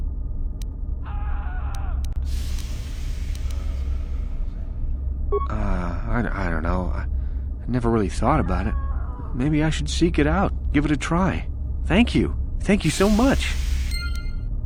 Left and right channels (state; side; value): identical; both; correlation 1.00